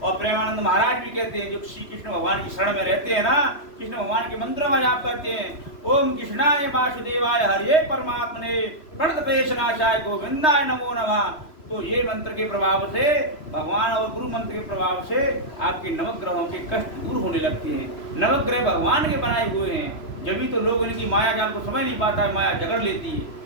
और प्रेमानंद महाराज भी कहते हैं, जो श्री कृष्ण भगवान की शरण में रहते हैं ना, कृष्ण भगवान के मंत्रों का जाप करते हैं, ओम कृष्णाय वासुदेवाय हरे परमात्मने प्रणतपेशनाशाय गोविंदाय नमो नमः। तो ये मंत्र के प्रभाव से, भगवान और गुरु मंत्र के प्रभाव से आपके नवग्रहों के कष्ट दूर होने लगते हैं। नवग्रह भगवान के बनाए हुए हैं, जब भी तो लोग इनकी माया जाल को समझ नहीं पाता है, माया जगड़ लेती है।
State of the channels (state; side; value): late; right; 3.0 ms